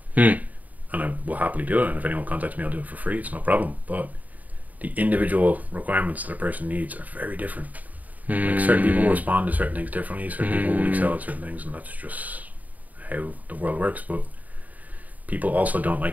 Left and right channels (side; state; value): left; late; 0.076 ms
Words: and I will happily do it, and if anyone contacts me, I'll do it for free. It's no problem. But the individual requirements that a person needs are very different. Like certain people will respond to certain things differently. Certain people will excel at certain things, and that's just how the world works. But people also don't